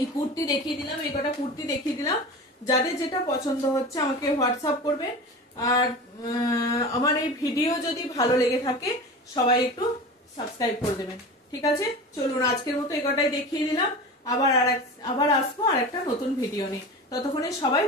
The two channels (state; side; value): normal; both; correlation 0.32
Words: কুর্তি দেখিয়ে দিলাম, এই কটা কুর্তি দেখিয়ে দিলাম। যাদের যেটা পছন্দ হচ্ছে আমাকে হোয়াটসঅ্যাপ করবেন। আর আমার এই ভিডিও যদি ভালো লেগে থাকে সবাই একটু সাবস্ক্রাইব করে দেবেন। ঠিক আছে, চলুন আজকের মতো এই কটাই দেখিয়ে দিলাম। আবার আসবো আর একটা নতুন ভিডিও নিয়ে, ততক্ষণে সবাই